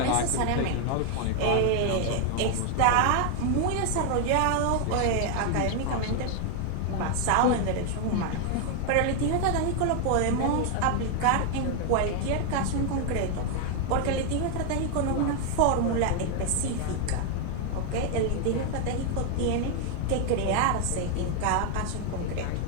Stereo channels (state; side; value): different; both; correlation 0.00